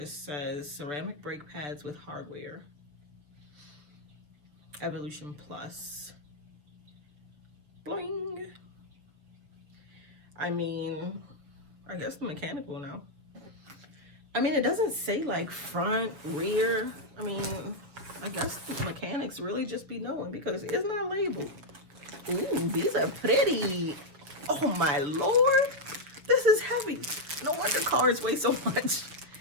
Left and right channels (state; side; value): late; left; 6.7 ms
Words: says ceramic brake pads with hardware. Evolution Plus. Bling. I mean, I guess the mechanic will know. I mean, it doesn't say like front, rear. I mean, I guess the mechanics really just be knowing because it's not labeled. Ooh, these are pretty. Oh my Lord. This is heavy. No wonder cars weigh so much.